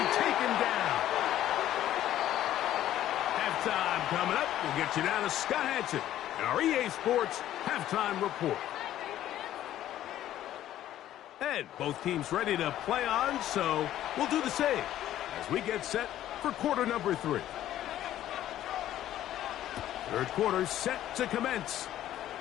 taken down. Halftime coming up. We'll get you down to Scott Hansen and our EA Sports Halftime Report. And both teams ready to play on, so we'll do the same as we get set for quarter number 3. Third quarter set to commence.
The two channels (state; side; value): quieter; right; 12.7 dB